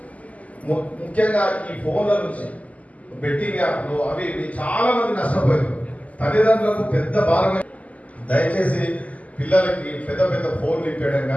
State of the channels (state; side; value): late; right; 0.072 ms